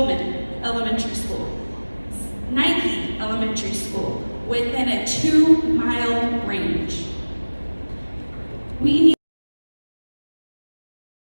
Elementary School, Nike Elementary School, within a 2-mile range. We need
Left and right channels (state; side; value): inverted; both; correlation -1.00